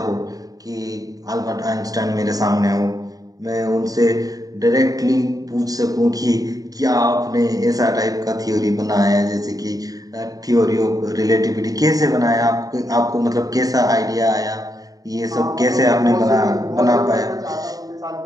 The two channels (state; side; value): late; left; 0.18 ms